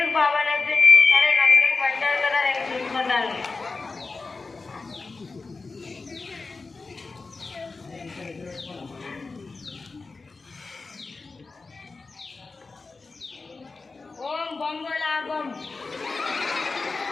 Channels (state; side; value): quieter; right; 4.0 dB